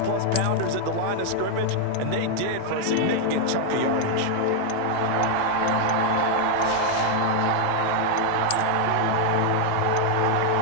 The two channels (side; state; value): both; different; correlation 0.00